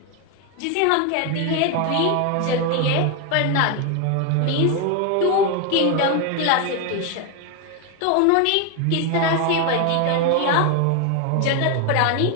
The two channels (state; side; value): different; both; correlation 0.01